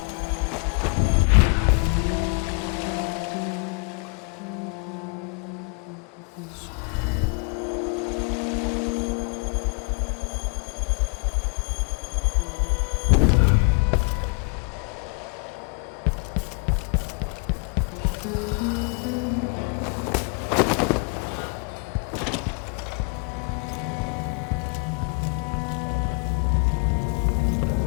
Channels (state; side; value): quieter; right; 34.6 dB